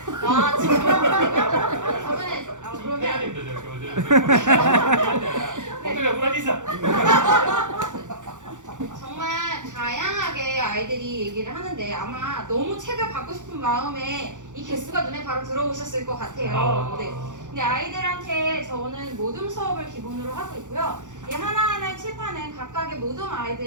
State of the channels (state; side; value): late; left; 0.86 ms